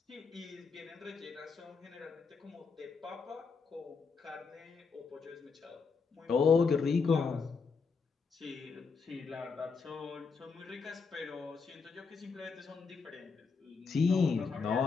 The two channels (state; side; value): quieter; right; 5.0 dB